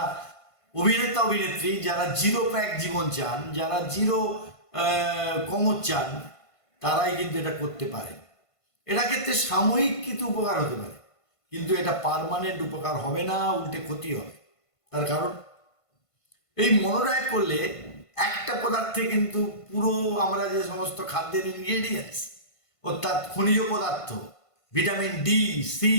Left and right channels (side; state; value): right; late; 1.5 ms